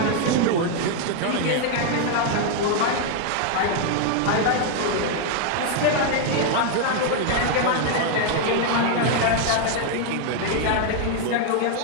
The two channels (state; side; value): different; both; correlation 0.00